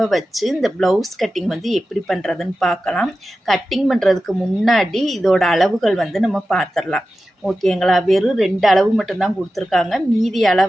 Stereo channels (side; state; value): both; normal; correlation 0.93